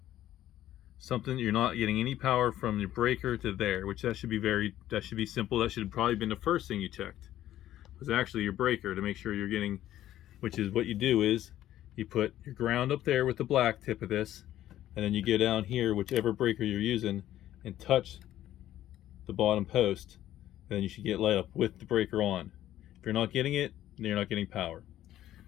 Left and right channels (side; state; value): right; quieter; 12.9 dB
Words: Something, you're not getting any power from your breaker to there, which that should be simple. That should have probably been the first thing you checked, was actually your breaker, to make sure you're getting, which is what you do is you put your ground up there with the black tip of this, and then you go down here, whichever breaker you're using, and touch the bottom post, and then you should get light up with the breaker on. If you're not getting it, then you're not getting power.